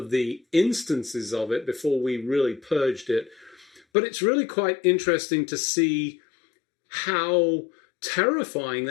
the instances of it before we really purged it. But it's really quite interesting to see how terrifying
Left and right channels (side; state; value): right; drops out; at 3.8 s